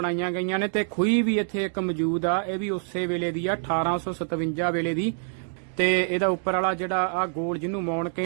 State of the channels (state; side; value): silent; left; digital silence